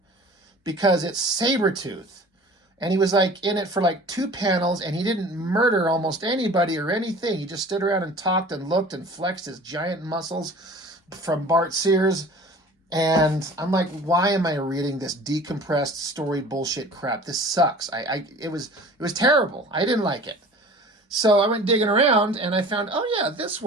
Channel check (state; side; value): normal; both; correlation 0.43